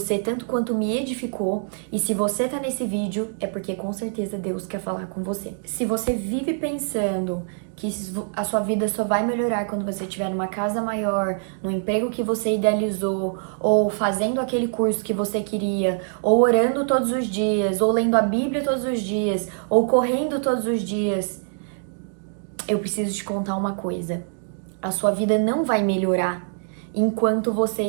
tanto quanto me edificou, e se você tá nesse vídeo é porque com certeza Deus quer falar com você. Se você vive pensando que a sua vida só vai melhorar quando você estiver numa casa maior, no emprego que você idealizou, ou fazendo aquele curso que você queria, ou orando todos os dias, ou lendo a Bíblia todos os dias, ou correndo todos os dias, eu preciso te contar uma coisa. A sua vida não vai melhorar enquanto você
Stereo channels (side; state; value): left; silent; digital silence